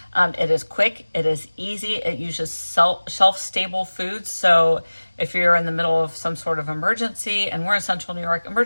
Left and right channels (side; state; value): both; inverted; correlation -1.00